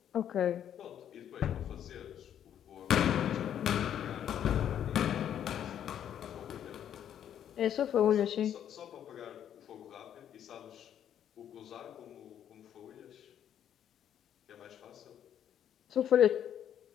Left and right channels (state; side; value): quieter; right; 9.9 dB